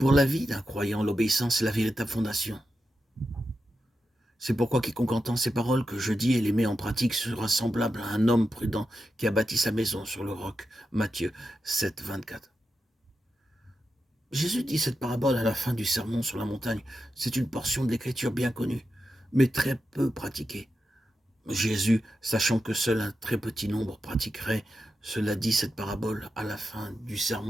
Pour la vie d'un croyant, l'obéissance est la véritable fondation. C'est pourquoi quiconque entend ces paroles que je dis et les met en pratique sera semblable à un homme prudent qui a bâti sa maison sur le roc. Matthieu 7, 24. Jésus dit cette parabole à la fin du sermon sur la montagne. C'est une portion de l'écriture bien connue, mais très peu pratiquée. Jésus, sachant que seul un très petit nombre pratiquerait, cela dit cette parabole à la fin du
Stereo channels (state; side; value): normal; both; correlation 0.89